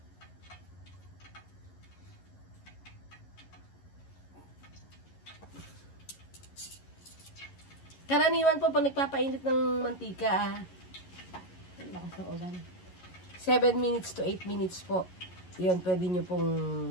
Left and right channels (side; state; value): right; late; 11 ms